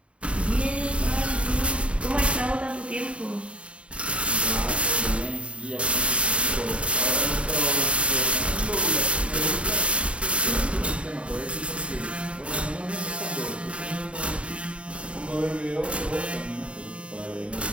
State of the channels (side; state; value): left; late; 0.060 ms